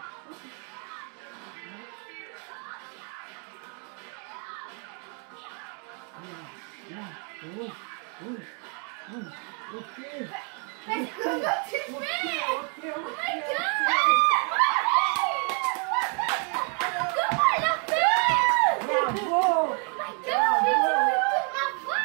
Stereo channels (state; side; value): quieter; left; 38.6 dB